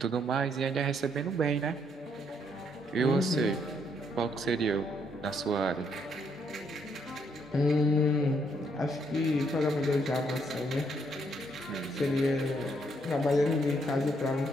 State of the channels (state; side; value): normal; both; correlation 0.72